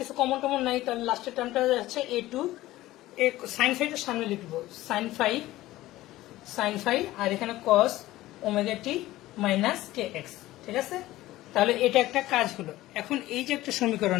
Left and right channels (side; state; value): right; quieter; 16.5 dB